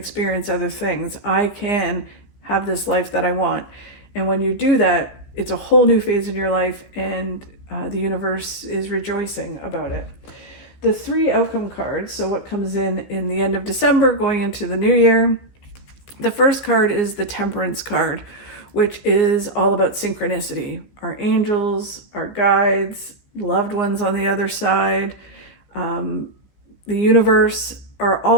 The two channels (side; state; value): right; late; 15 ms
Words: other things. I can have this life that I want. And when you do that, it's a whole new phase in your life, and the universe is rejoicing about it. The 3 outcome cards, so what comes in the end of December going into the new year. The first card is the Temperance card, which is all about synchronicity. Our angels, our guides, loved ones on the other side, the universe are